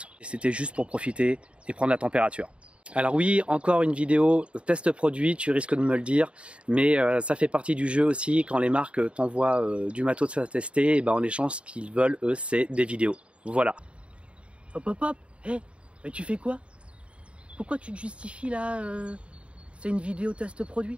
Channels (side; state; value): left; late; 0.059 ms